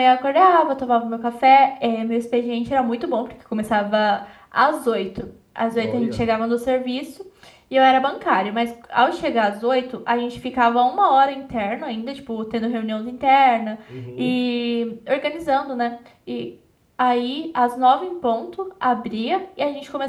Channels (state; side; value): identical; both; correlation 1.00